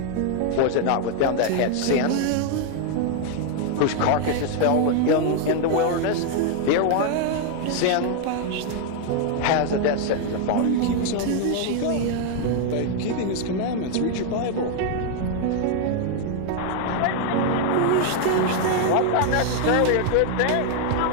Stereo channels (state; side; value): different; both; correlation 0.00